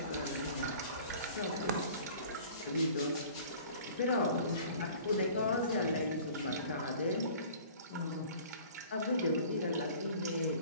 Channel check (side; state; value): both; inverted; correlation -0.47